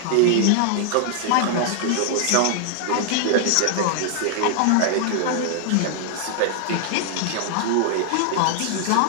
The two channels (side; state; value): both; different; correlation 0.00